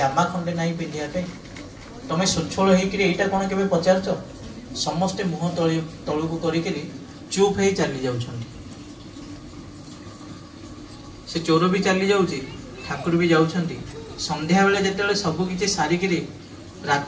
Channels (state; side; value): identical; both; correlation 1.00